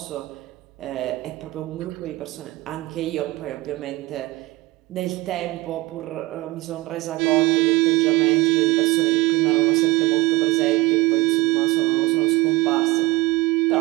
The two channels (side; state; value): left; quieter; 20.3 dB